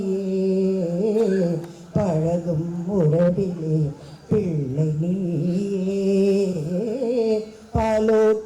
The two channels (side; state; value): both; identical; correlation 1.00